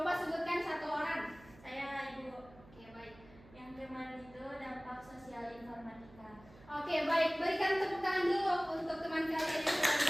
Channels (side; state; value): right; noise; hum, 23 dB below the sound